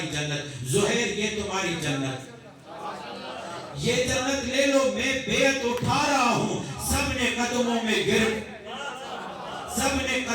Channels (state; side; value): identical; both; correlation 1.00